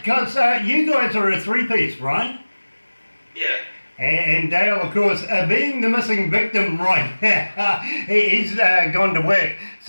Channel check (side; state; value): both; inverted; correlation -1.00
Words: you guys are a three-piece, right? Yeah. And Dale, of course, being the missing victim right now, he's gone to work.